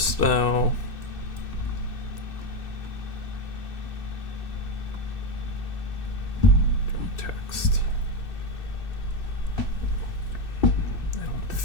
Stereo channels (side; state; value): right; late; 2.6 ms